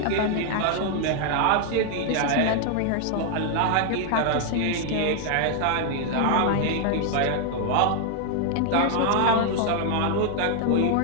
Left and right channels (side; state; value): both; different; correlation 0.00